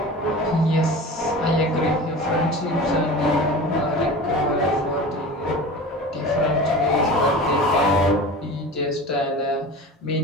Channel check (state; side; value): normal; both; correlation 0.35